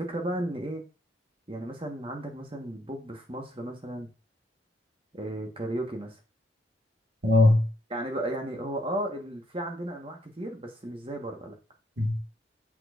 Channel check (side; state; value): both; normal; correlation 0.74